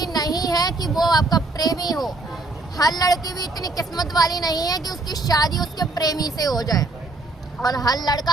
नहीं है कि वो आपका प्रेमी हो। हर लड़की भी इतनी किस्मत वाली नहीं है कि उसकी शादी उसके प्रेमी से हो जाए, और हर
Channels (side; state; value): left; quieter; 3.1 dB